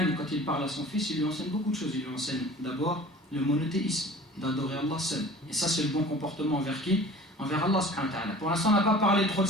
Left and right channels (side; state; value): both; normal; correlation 0.43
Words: quand il parle à son fils, il lui enseigne beaucoup de choses. Il lui enseigne d'abord le monothéisme, d'adorer Allah seul. Et ça, c'est le bon comportement envers qui? Envers Allah subhanahu wa ta'ala. Pour l'instant, on n'a pas parlé trop de